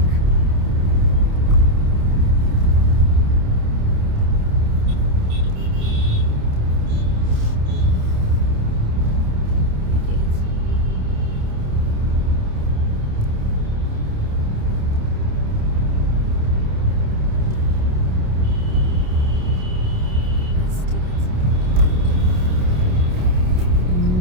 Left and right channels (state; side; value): late; left; 28 ms